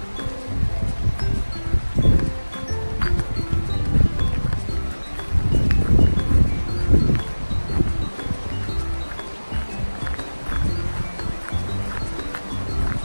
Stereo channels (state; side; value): inverted; both; correlation -1.00